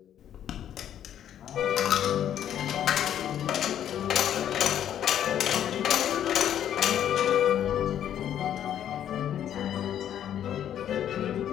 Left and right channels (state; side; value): quieter; right; 10.3 dB